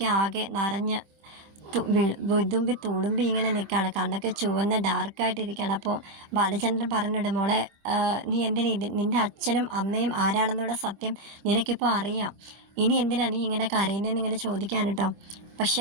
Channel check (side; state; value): left; late; 25 ms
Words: ആകെ നിറഞ്ഞ് വിതുമ്പി തുളുമ്പി ഇങ്ങനെ നിൽക്കുകയാണ്. കണ്ണൊക്കെ ചുവന്ന് ഡാർക്കായിട്ടിരിക്കുകയാണ്. അപ്പോൾ ബാലചന്ദ്രൻ പറഞ്ഞിട്ട്, മോളെ, നീ എന്തിനാ നിൻ്റെ അച്ഛനും അമ്മയും ആരാണെന്നുള്ള സത്യം നിനക്കിപ്പോൾ അറിയാം. ഇനി എന്തിനാ നീ ഇങ്ങനെ കരയുന്നതെന്ന് ഇങ്ങനെ ചോദിക്കാൻ കേട്ടോ. പക്ഷെ